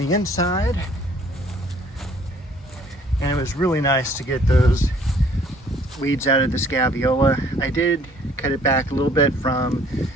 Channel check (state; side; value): normal; both; correlation 0.58